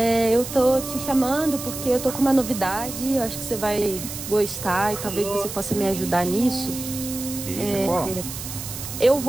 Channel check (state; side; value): noise; right; hiss, 9 dB below the sound